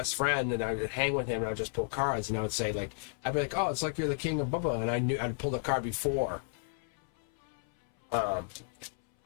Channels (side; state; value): right; silent; 56 dB below the other